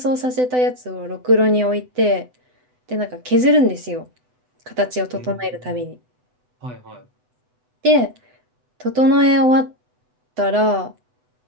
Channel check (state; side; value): late; left; 7.9 ms